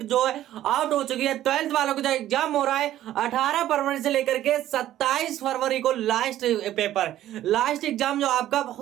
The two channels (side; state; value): left; quieter; 13.0 dB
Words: जो है आउट हो चुकी है। 12th वालों को जो एग्जाम हो रहा है 18 फरवरी से लेकर के 27 फरवरी को लास्ट एग्जाम जो आपका